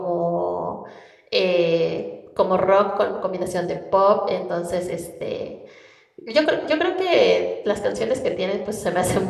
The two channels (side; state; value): both; identical; correlation 1.00